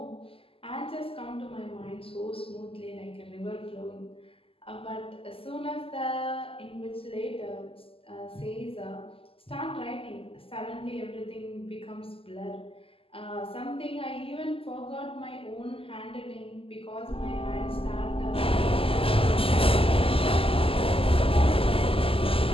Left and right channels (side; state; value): right; late; 0.26 ms